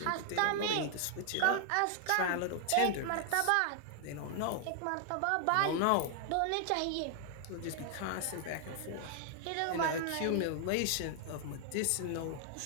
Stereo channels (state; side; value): different; both; correlation 0.00